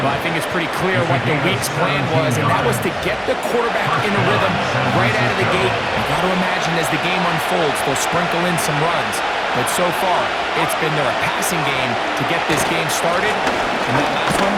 I think it's pretty clear what the week's plan was, and that was to get the quarterback in a rhythm right out of the gate. You got to imagine as the game unfolds, they'll sprinkle in some runs. But so far, it's been their passing game to get this game started, and that last one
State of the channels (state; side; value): identical; both; correlation 1.00